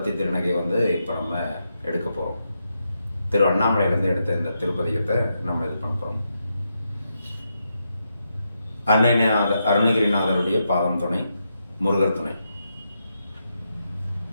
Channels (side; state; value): both; inverted; correlation -0.83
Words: திருநகை இப்போ நம்ம எடுக்க போகிறோம். திரு அண்ணாமலையிலேருந்து எடுத்த இந்த திருப்பதிகத்தை நம்ம இது பண்ண போகிறோம். அருணகிரிநாதருடைய பாதம் துணை, முருகர் துணை.